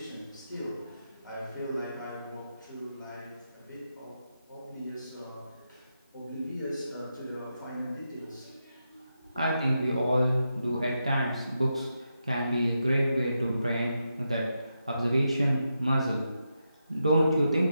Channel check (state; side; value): inverted; both; correlation -0.86